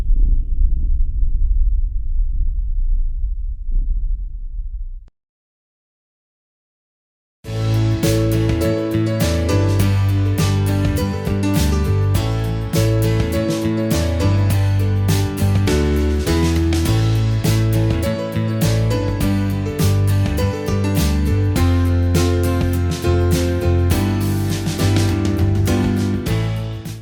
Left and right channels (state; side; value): identical; both; correlation 1.00